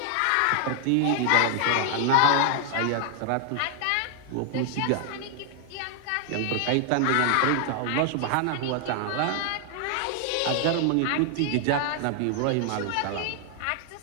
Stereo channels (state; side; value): different; both; correlation 0.00